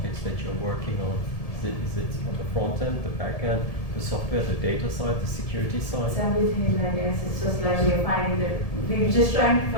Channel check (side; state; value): right; late; 1.7 ms